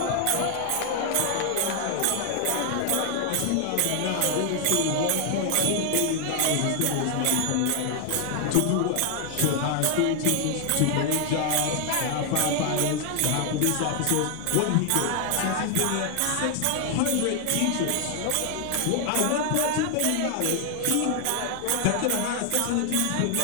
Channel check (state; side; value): different; both; correlation 0.00